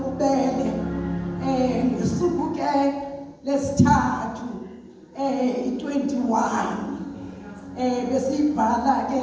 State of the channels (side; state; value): both; identical; correlation 1.00